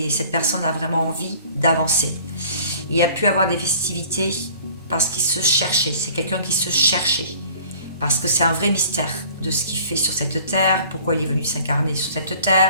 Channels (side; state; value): both; inverted; correlation -0.50